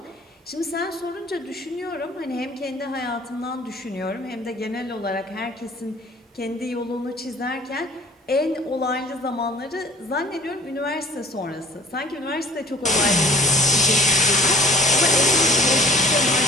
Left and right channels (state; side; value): normal; both; correlation 0.50